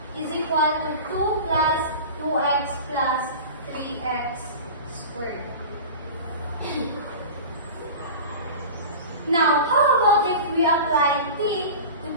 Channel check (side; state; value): both; inverted; correlation -0.33